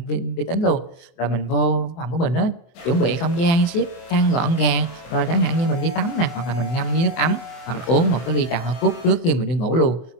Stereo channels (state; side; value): late; right; 24 ms